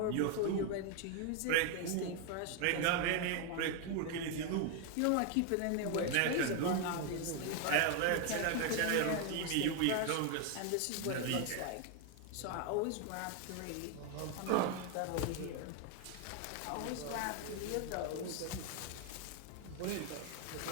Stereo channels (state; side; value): different; both; correlation 0.01